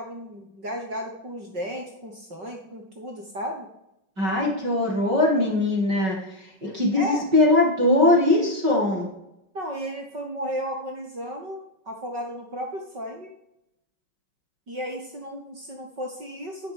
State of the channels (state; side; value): late; left; 5.3 ms